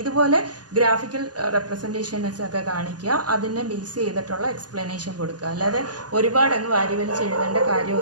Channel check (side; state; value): left; late; 0.69 ms